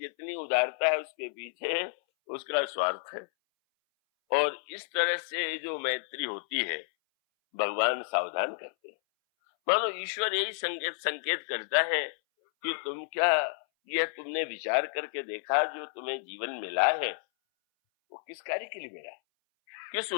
जितनी उदारता है उसके पीछे उसका स्वार्थ है। और इस तरह से जो मैत्री होती है भगवान सावधान करते हैं। मानो ईश्वर यही संकेत करता है कि तुम क्या, यह तुमने विचार करके देखा जो तुम्हें जीवन मिला है वो किस कार्य के लिए मिला है, किस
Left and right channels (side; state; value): right; silent; 57 dB below the other